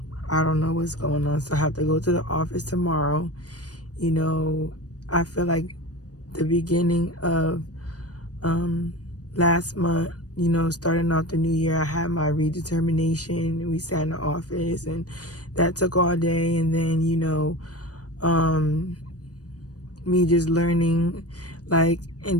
don't know what's going on. So I have to go to the office tomorrow. I feel like the beginning of last month, starting off the new year, I had my redetermination. We sat in the office and that took all day. And then, me just learning, like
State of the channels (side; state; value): right; late; 0.68 ms